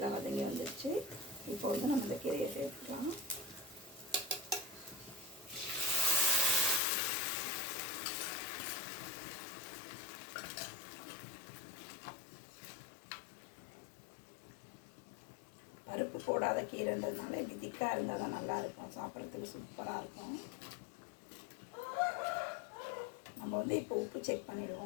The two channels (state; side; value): drops out; right; at 6.8 s